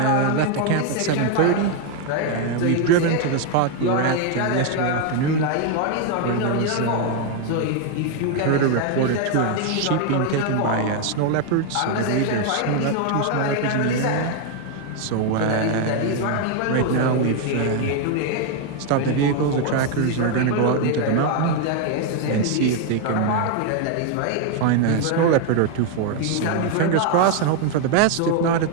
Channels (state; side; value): different; both; correlation 0.01